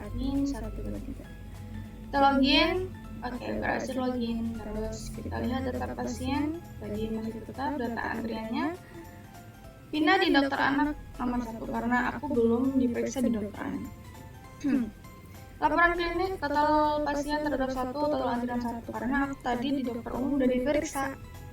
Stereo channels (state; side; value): identical; both; correlation 1.00